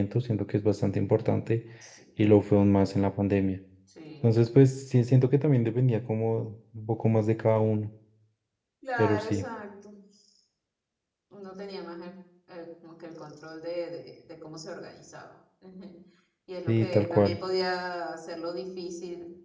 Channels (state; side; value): identical; both; correlation 1.00